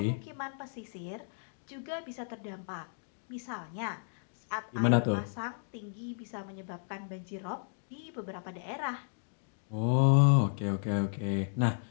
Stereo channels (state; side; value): silent; right; digital silence